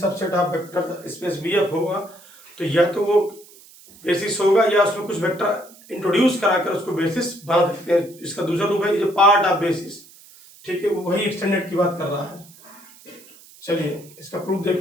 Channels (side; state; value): right; noise; hiss, 23 dB below the sound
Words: of vector space BF होगा तो या तो वो बेसिस होगा या उसमें कुछ वेक्टर इंट्रोड्यूस कराकर उसको बेसिस बना सकते हैं। इसका दूसरा रूप है जो पार्ट ऑफ बेसिस, ठीक है, वही एक्सटेंडेड की बात कर रहा है। चलिए, इसका प्रूफ